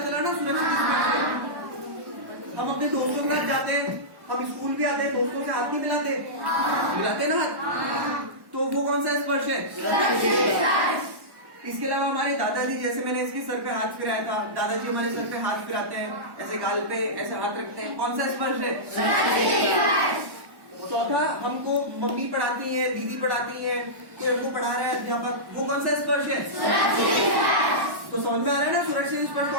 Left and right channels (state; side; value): late; left; 1.1 ms